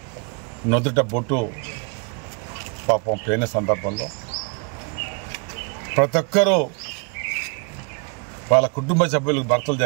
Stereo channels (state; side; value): quieter; left; 34.5 dB